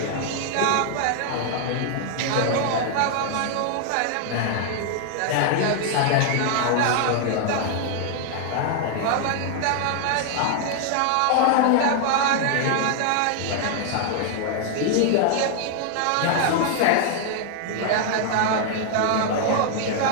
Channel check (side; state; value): both; different; correlation 0.00